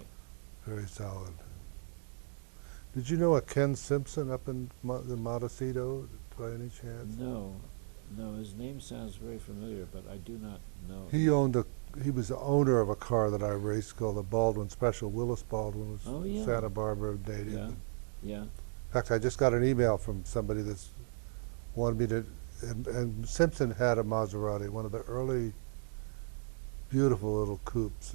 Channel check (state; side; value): silent; left; digital silence